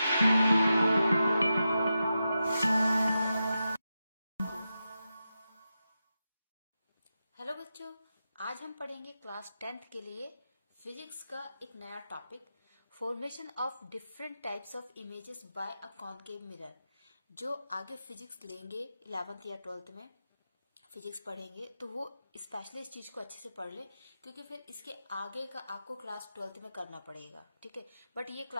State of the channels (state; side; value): inverted; both; correlation -0.89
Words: Hello बच्चों, आज हम पढ़ेंगे क्लास 10th के लिए फिजिक्स का एक नया topic, formation of different types of images bye a concave mirror. जो आगे फिजिक्स लेंगे 11th या 12th में फिजिक्स पढ़ेंगे तो वो स्पेशली इस चीज को अच्छे से पढ़ ले, क्योंकि फिर इसके आगे का आपको क्लास 12th में करना पड़ेगा। ठीक है, बट ये